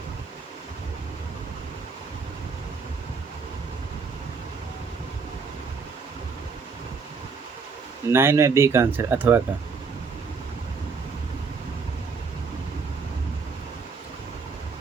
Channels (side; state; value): left; quieter; 5.1 dB